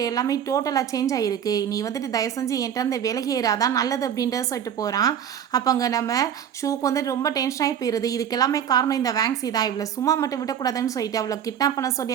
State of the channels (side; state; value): left; quieter; 9.1 dB